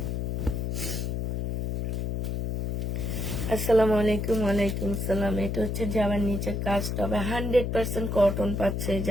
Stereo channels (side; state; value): left; noise; hum, 1 dB below the sound